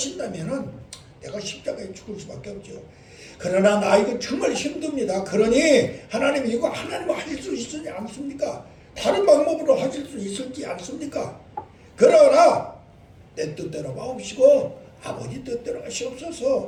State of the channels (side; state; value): both; identical; correlation 1.00